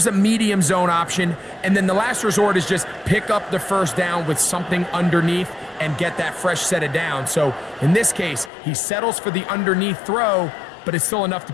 a medium zone option. And then the last resort is just pick up the 1st down with something underneath and get that fresh set of down. So in this case, he settles for the underneath throw, but it's still enough to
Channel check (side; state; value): right; drops out; at 8.5 s